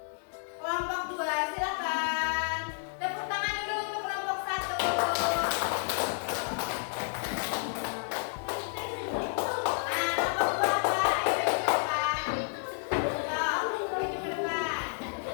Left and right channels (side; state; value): right; silent; digital silence